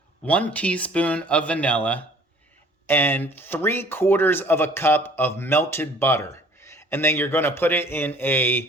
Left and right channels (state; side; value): normal; both; correlation 0.53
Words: 1 teaspoon of vanilla, and 3/4 cup of melted butter. And then you're going to put it in